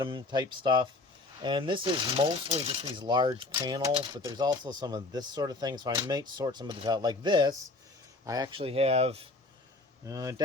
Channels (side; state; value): right; quieter; 3.2 dB